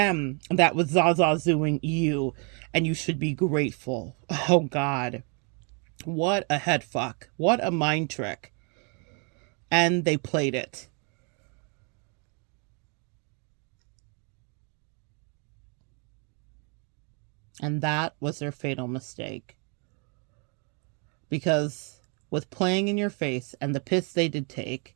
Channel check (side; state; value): left; quieter; 36.5 dB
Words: that was Zazazuing you. And you should be grateful. Oh, God. What a head fuck. What a mind trick. And they played it. And that was their fatal mistake. Because with playing in your face and the piss they did take,